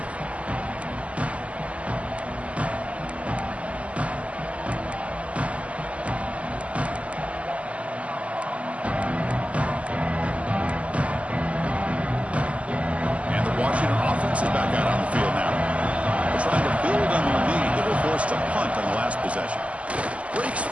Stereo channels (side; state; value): left; late; 0.064 ms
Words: Is back out on the field now. They're trying to build on their lead. They were forced to punt on the last possession. Breaks